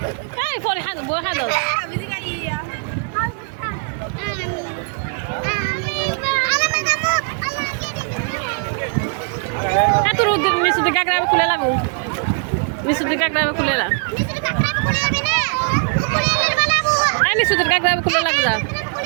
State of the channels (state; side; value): quieter; left; 39.6 dB